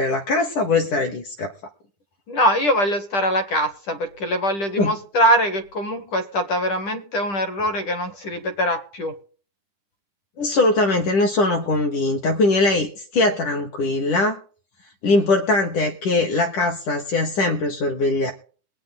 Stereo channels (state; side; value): late; right; 10 ms